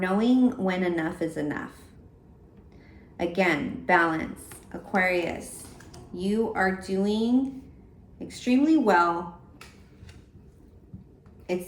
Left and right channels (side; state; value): both; identical; correlation 1.00